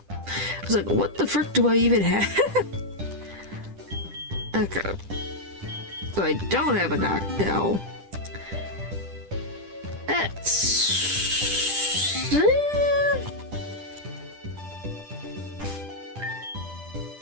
I was like, what the frick do I even have? Okay. So I don't have a knockdown. That's...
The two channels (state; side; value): late; left; 10 ms